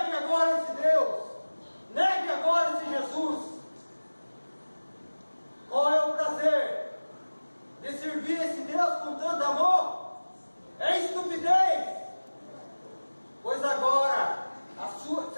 agora esse Deus. Negue agora esse Jesus. Qual é o prazer de servir esse Deus com tanto amor? É estupidez. Pois agora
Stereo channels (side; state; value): both; inverted; correlation -1.00